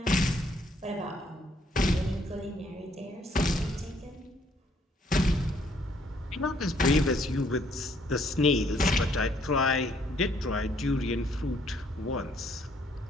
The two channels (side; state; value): both; normal; correlation 0.66